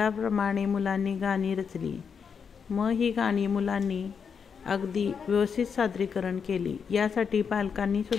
मुलांनी गाणी रचली. ही गाणी मुलांनी अगदी व्यवस्थित सादरीकरण केली. यासाठी पालकांनी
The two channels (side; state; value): right; quieter; 6.5 dB